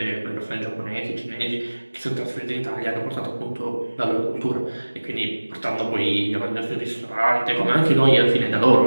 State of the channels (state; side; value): inverted; both; correlation -1.00